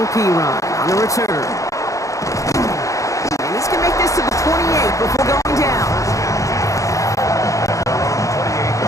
Perine on the return. And he's going to make this to the 28 before going down.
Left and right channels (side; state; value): right; late; 0.16 ms